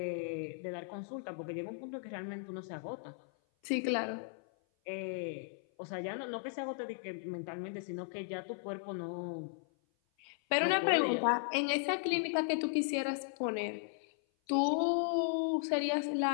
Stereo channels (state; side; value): silent; right; 54 dB below the other